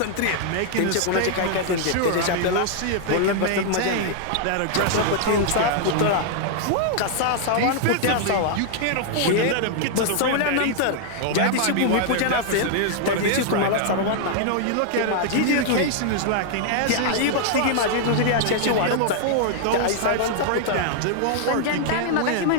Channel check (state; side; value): different; both; correlation -0.01